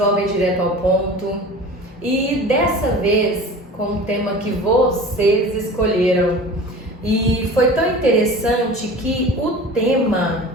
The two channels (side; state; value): both; normal; correlation 0.38